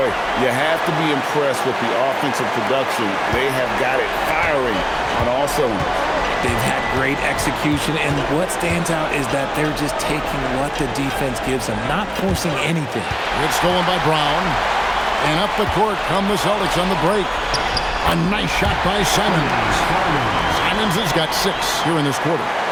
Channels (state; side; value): identical; both; correlation 1.00